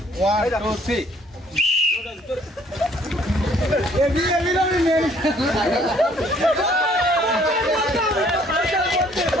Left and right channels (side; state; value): both; normal; correlation 0.61